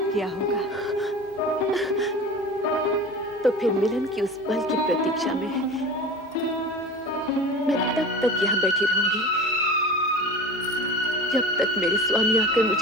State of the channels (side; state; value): both; normal; correlation 0.34